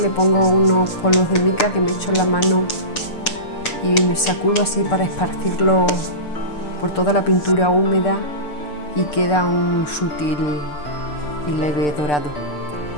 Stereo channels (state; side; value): late; right; 6.8 ms